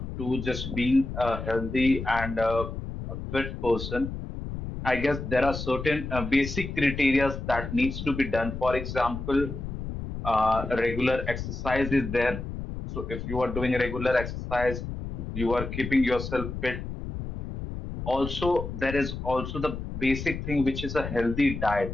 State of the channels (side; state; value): left; noise; rumble, 7 dB below the sound